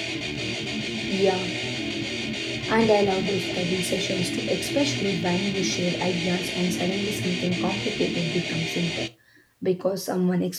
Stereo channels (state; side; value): identical; both; correlation 1.00